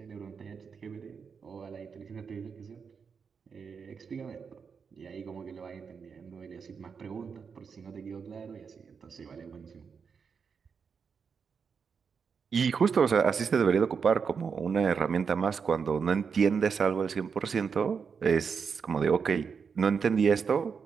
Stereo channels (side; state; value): left; quieter; 6.0 dB